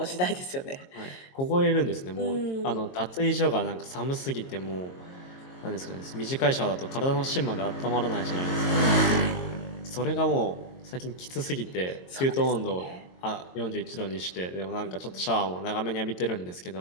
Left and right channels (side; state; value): right; late; 22 ms